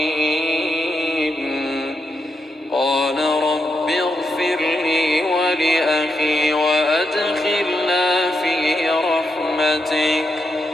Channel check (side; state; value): both; normal; correlation 0.84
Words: قال رب اغفر لي ولأخي وأدخلنا في رحمتك